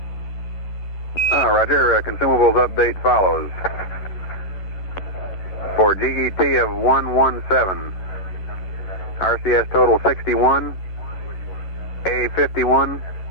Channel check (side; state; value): right; late; 11 ms